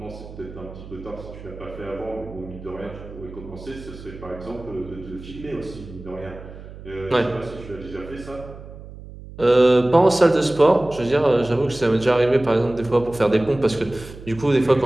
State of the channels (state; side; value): noise; right; hum, 15 dB below the sound